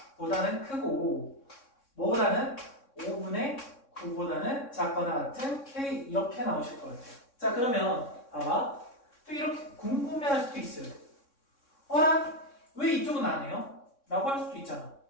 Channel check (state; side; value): late; right; 3.6 ms